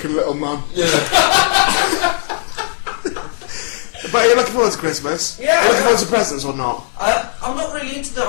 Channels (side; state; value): right; silent; 57 dB below the other